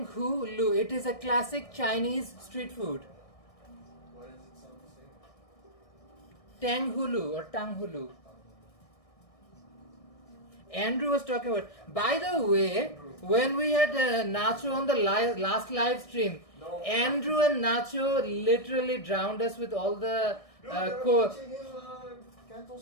Hulu. It is a classic Chinese street food. Why does it sound the same? Tang Hulu or Tang Hulu. Andrew was talking about. By the way, when we had Nacho on the last live stream, Andrew and Nacho literally drowned us with all the teaching him Canto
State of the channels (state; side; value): late; right; 1.6 ms